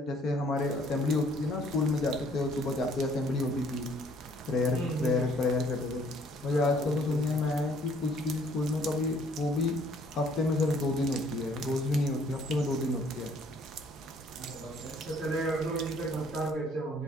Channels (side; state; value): both; normal; correlation 0.61